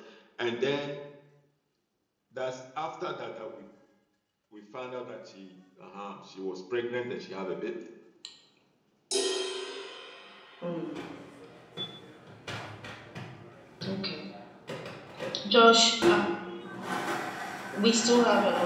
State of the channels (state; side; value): identical; both; correlation 1.00